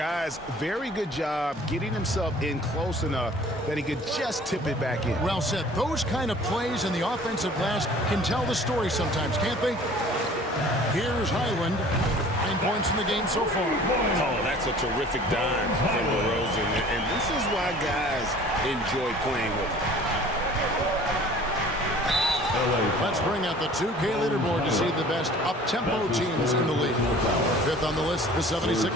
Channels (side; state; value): both; normal; correlation 0.49